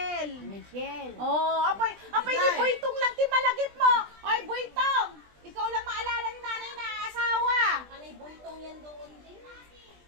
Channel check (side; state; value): left; late; 20 ms